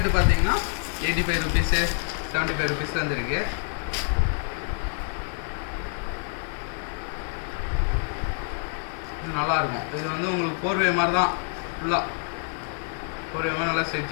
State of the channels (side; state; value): right; silent; 60 dB below the other